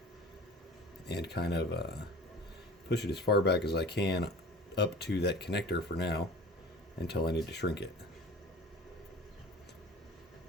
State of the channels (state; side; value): normal; both; correlation 0.42